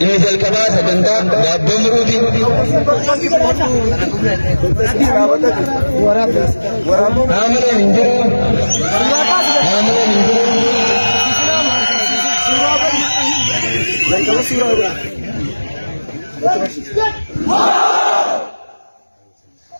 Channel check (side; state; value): both; inverted; correlation -1.00